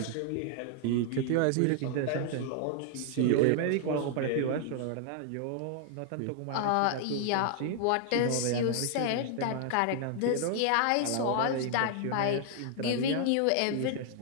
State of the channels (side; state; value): both; different; correlation 0.00